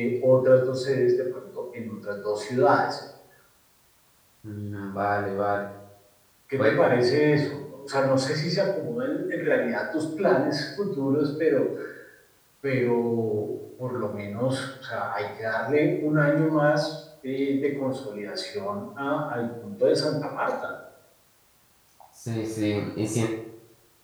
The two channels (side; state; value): both; identical; correlation 1.00